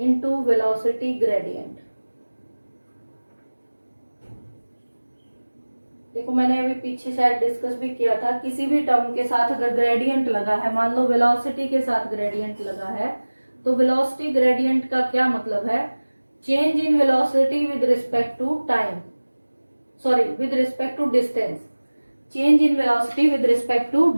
velocity gradient. देखो मैंने अभी पीछे शायद डिस्कस भी किया था, किसी भी टर्म के साथ अगर ग्रेडियंट लगा है, मान लो वेलोसिटी के साथ ग्रेडियंट लगा है, तो वेलोसिटी ग्रेडियंट का क्या मतलब है, change in velocity with respect to time, sorry with respect to distance, change in velocity with respect to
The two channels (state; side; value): inverted; both; correlation -1.00